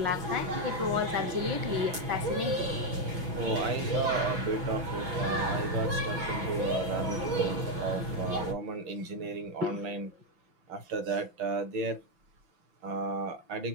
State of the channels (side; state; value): left; late; 6.0 ms